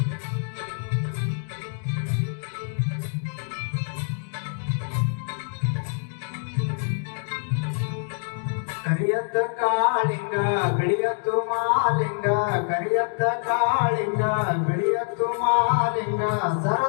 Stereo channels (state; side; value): silent; right; 55 dB below the other